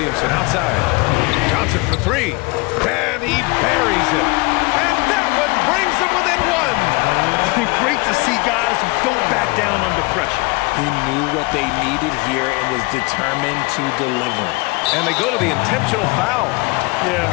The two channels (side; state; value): right; quieter; 26.5 dB